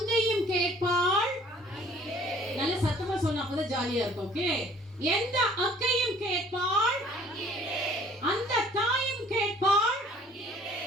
கேட்பாள். நல்ல சத்தமா சொன்னா அப்பதான் ஜாலியா இருக்கும். ஓகே, எந்த அக்கையும் கேட்பாள், அந்த தாயும் கேட்பாள்.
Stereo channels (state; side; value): normal; both; correlation 0.55